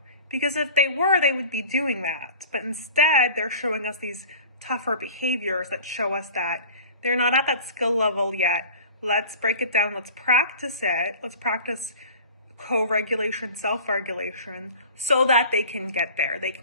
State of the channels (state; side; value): inverted; both; correlation -0.42